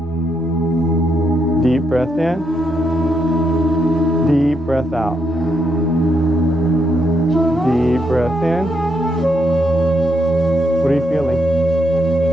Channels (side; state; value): both; normal; correlation 0.78